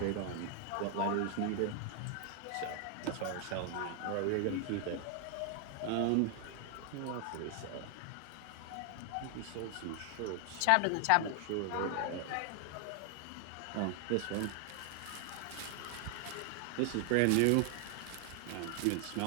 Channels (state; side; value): different; both; correlation 0.00